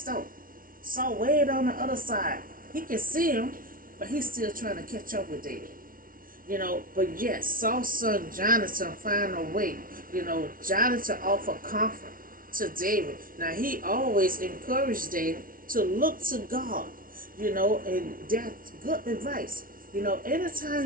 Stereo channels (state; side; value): late; left; 0.41 ms